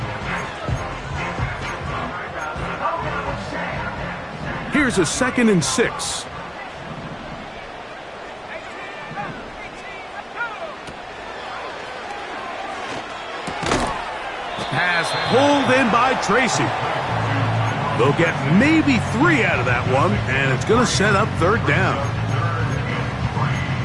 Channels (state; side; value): identical; both; correlation 1.00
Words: Here's a 2nd and 6. Pass pulled in by Tracy. They'll get maybe 3 out of that one, and it's going to set up third down.